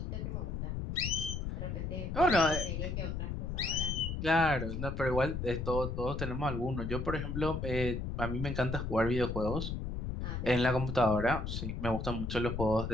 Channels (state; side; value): noise; left; rumble, 4 dB below the sound